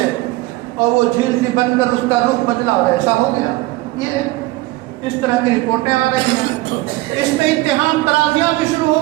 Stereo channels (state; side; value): quieter; left; 19.7 dB